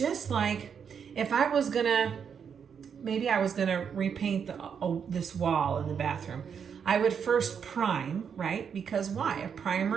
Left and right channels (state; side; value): quieter; left; 7.1 dB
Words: like if I was gonna, maybe I was gonna repaint this wall in the bathroom, I would first prime, right? Because why? A